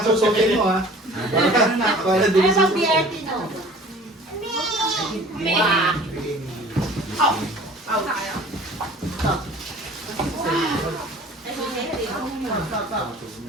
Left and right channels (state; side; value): normal; both; correlation 0.47